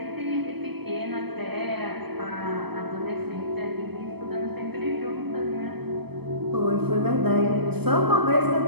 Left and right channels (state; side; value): late; left; 0.98 ms